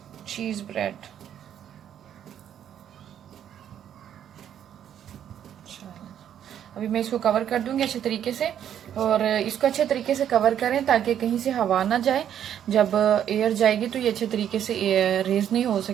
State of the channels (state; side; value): quieter; left; 9.8 dB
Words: चीज़ ब्रेड। अभी मैं इसको कवर कर दूंगी अच्छे तरीके से, और इसको अच्छे तरीके से कवर करें ताकि कहीं से हवा ना जाए। जब एयर जाएगी तो ये अच्छे तरीके से रेज नहीं हो